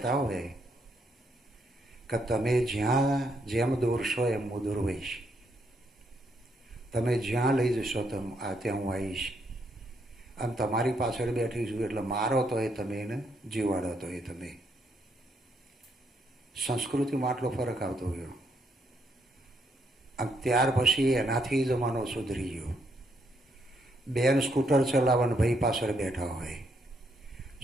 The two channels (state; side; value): normal; both; correlation 0.75